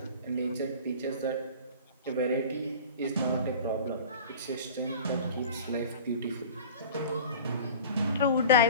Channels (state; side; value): inverted; both; correlation -0.39